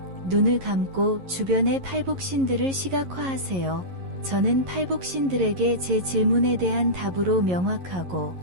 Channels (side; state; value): left; late; 11 ms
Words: 눈을 감고 주변의 팔복신들을 시각화하세요. 저는 팔복신들에게 제 질문에 대한 답으로 명확하고